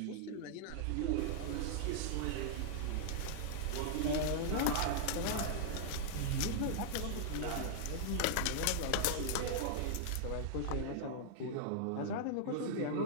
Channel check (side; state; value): both; different; correlation -0.01